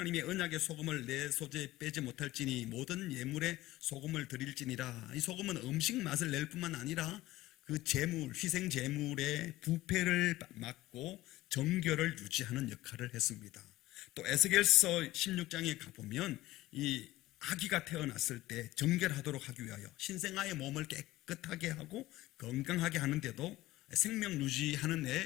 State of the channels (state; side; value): quieter; right; 17.0 dB